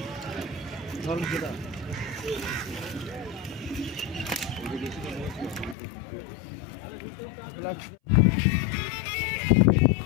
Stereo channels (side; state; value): right; drops out; at 5.8 s